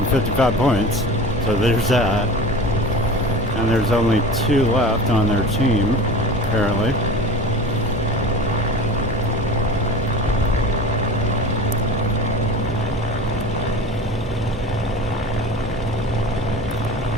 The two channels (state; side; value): normal; both; correlation 0.35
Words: points, so there's that. And there's only 2 left on their team, apparently.